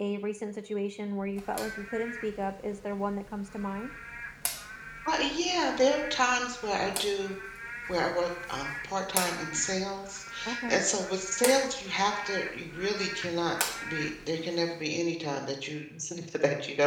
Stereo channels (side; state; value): both; identical; correlation 1.00